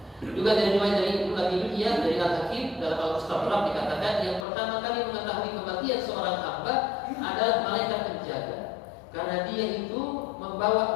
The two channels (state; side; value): drops out; right; at 4.5 s